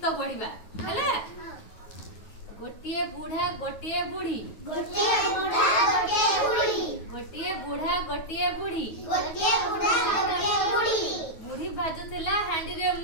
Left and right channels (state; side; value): late; right; 9.3 ms